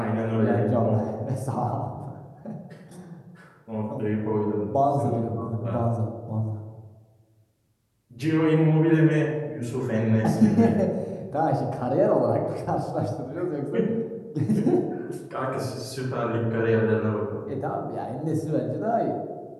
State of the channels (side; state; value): both; identical; correlation 1.00